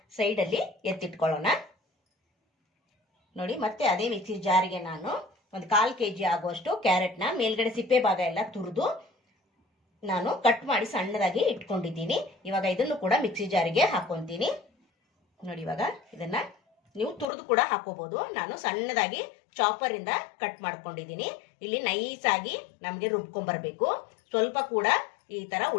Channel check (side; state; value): right; drops out; at 17.2 s